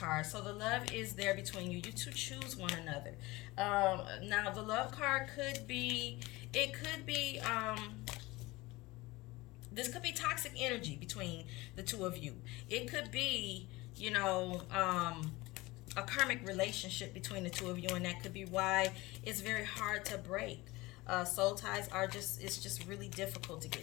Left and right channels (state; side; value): quieter; right; 21.2 dB